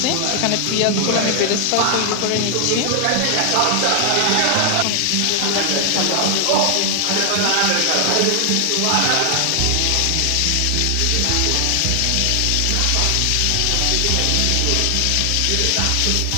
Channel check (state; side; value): different; both; correlation 0.00